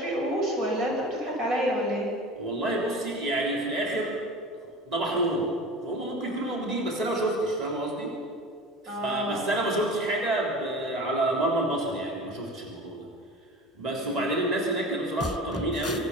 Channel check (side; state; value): both; normal; correlation 0.36